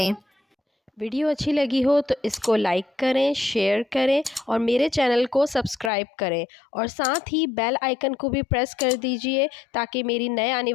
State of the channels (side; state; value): right; drops out; at 5.9 s